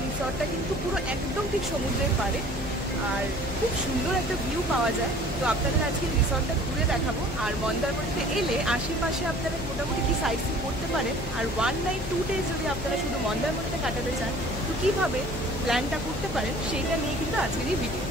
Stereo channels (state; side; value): noise; left; hum, 9 dB below the sound